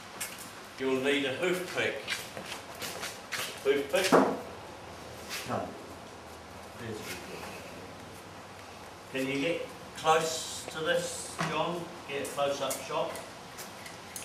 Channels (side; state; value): both; identical; correlation 1.00